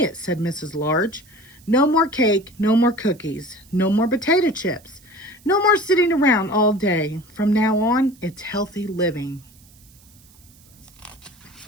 said Mrs. Large. No more cake, no more cookies, no more potato chips, no more sitting around all day. From now on, it's healthy living.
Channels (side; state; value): right; noise; hiss, 27 dB below the sound